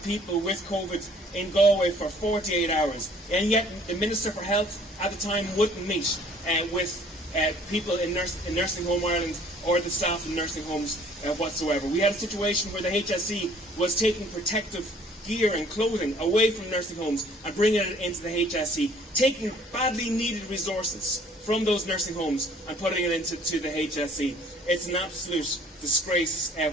people with COVID in Galway for 48 hours. And yet the Minister for Health at the time wouldn't meet with people in Nursing Home Ireland or the staff in nursing homes whatsoever. We had a situation where the HSE was taking protective gear and clothing away from nursing homes and bringing it into the HSE, taking badly needed resources from those nursing homes and putting it into the HSE. It's an absolute disgrace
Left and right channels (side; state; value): both; normal; correlation 0.56